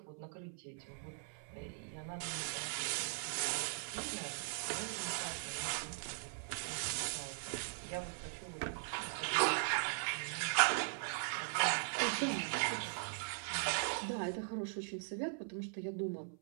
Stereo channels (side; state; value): left; silent; 51 dB below the other